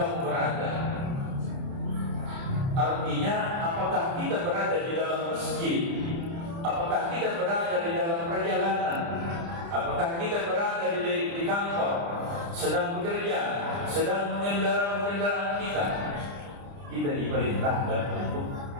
berada. Artinya, apakah kita berada di dalam masjid, apakah kita berada di dalam perjalanan, apakah kita berada di kantor, sedang bekerja, sedang mengendarai kendaraan kita diperintahkan untuk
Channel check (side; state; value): left; late; 30 ms